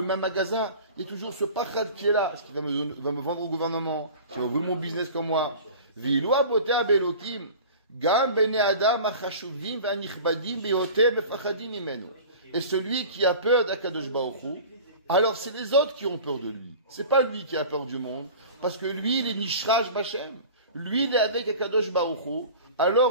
magasin? Il y a toujours ce pachad qui est là. Est-ce qu'il va me vendre au gouvernement? Est-ce qu'il va ouvrir mon business comme moi? Viloua botea belokim, gam bene adam achashuvim v'anichbadim beyote mefachadim imenu. Et celui qui a peur d'Akadosh Baruch Hu, alors c'est les autres qui ont peur de lui. C'est pas lui qui a peur du monde, parce que lui, il est nishraj b'Hashem. Lui, il est avec Akadosh Baruch Hu,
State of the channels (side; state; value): both; inverted; correlation -0.39